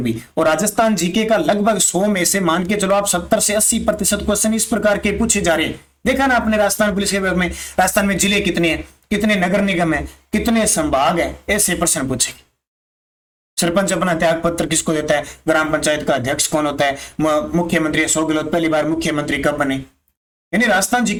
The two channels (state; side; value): identical; both; correlation 1.00